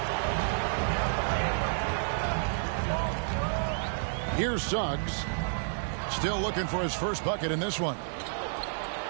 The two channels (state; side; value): silent; left; digital silence